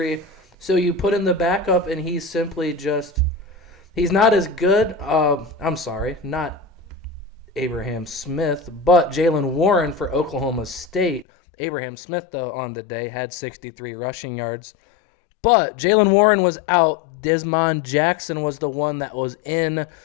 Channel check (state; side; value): drops out; right; at 11.2 s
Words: So you put in the backup, and he's simply just – he's not as good. I'm sorry, not Abraham Smith, but Jalen Warren for Oklahoma State. Abraham Smith, though, on the day had 63 rushing yards. But Jalen Warren was out. Desmond Jackson was the one that was in.